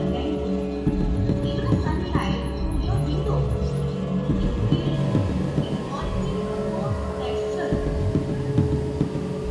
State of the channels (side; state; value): both; identical; correlation 1.00